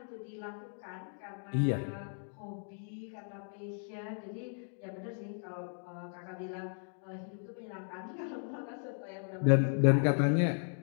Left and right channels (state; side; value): silent; right; 54 dB below the other